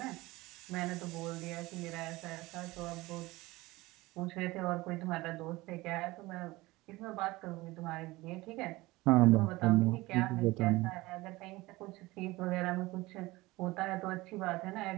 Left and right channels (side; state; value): left; quieter; 20.3 dB